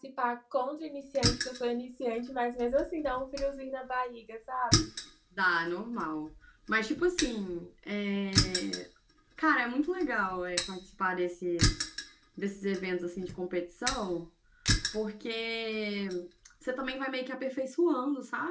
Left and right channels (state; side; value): identical; both; correlation 1.00